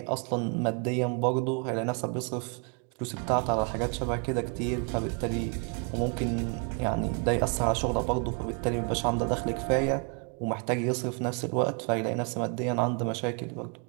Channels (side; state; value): left; quieter; 37.3 dB